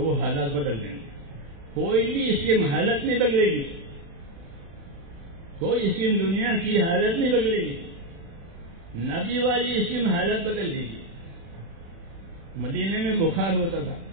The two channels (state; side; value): late; left; 36 ms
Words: وہ حالات بدل دیں گے. کوئی بھی اس کی حالت نہیں بدلے گی، کوئی اس کی دنیا کی حالت نہیں بدلے گی. نبی والی اس کی حالت بدل دے گی. مدینے میں بخار ہوتا تھا،